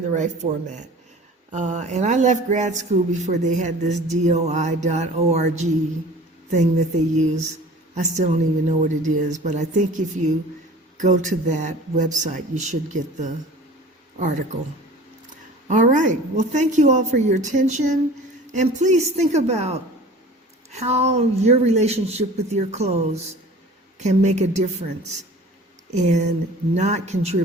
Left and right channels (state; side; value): normal; both; correlation 0.43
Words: the right format. And I left grad school before they had this DOI.org thing that they use. I still don't even know what it is, but I think if you go to that website, you should get the article. All right. Well, thank you all for your attention. And please think about how your relationship with your clothes can make a difference in not